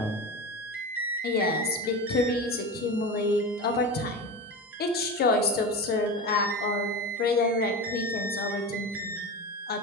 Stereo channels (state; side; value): normal; both; correlation 0.25